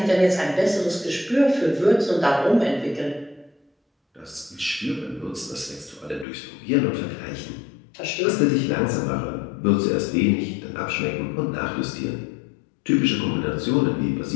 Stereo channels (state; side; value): drops out; right; at 6.2 s